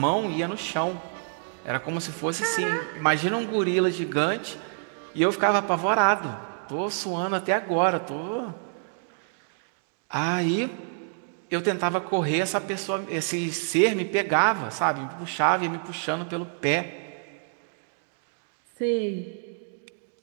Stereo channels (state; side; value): silent; left; digital silence